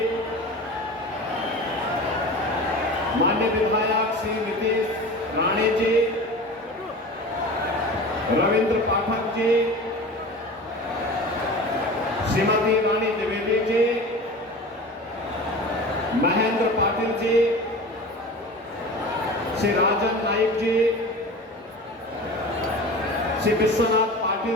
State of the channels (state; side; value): normal; both; correlation 0.34